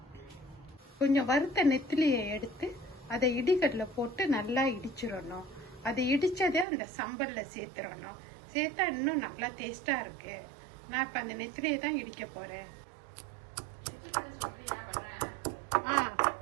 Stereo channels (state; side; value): drops out; left; at 6.7 s